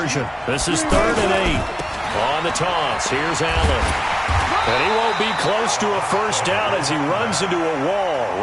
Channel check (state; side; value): identical; both; correlation 1.00